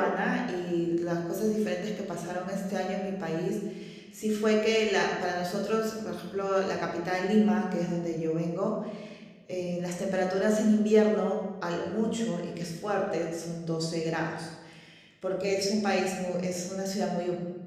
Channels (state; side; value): identical; both; correlation 1.00